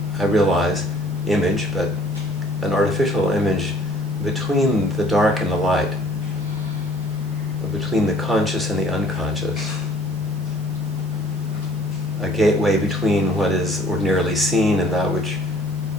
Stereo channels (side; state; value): both; normal; correlation 0.55